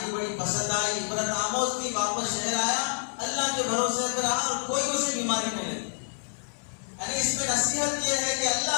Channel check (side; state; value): right; silent; 59 dB below the other